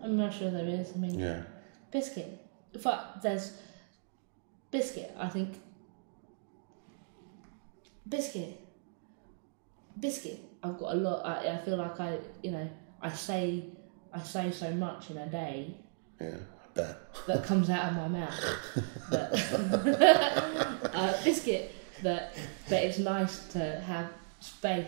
I'm not sure there is. I mean, Biscuit. Fuck, there's Biscuit. I think Biscuit. I've got a lot. I feel like I say so much in a day. Yeah, I bet. That comes out of my mouth. Biscuit. That it's nice to have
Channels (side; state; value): left; silent; digital silence